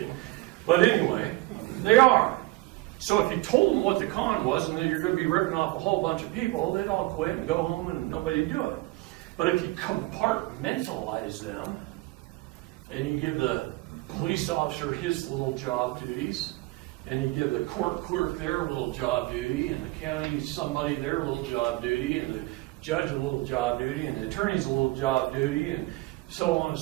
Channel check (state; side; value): quieter; left; 20.1 dB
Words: But anyway, they are. So if you told them what the con was and that you're going to be ripping off a whole bunch of people, they'd all quit and go home and nobody would do it. But if you compartmentalize them and you give the police officer his little job duties, and you give the court clerk their little job duty, and the county somebody their little job duty, and the judge a little job duty, and the attorney's a little job duty, and so on and